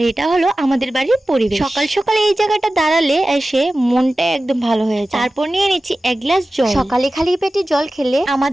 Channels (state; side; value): normal; both; correlation 0.95